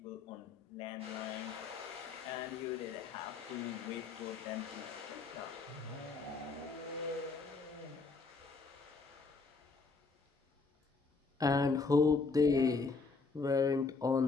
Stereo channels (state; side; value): quieter; right; 4.3 dB